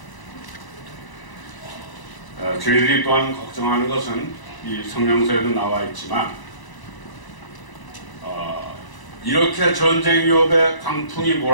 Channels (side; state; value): right; late; 1.0 ms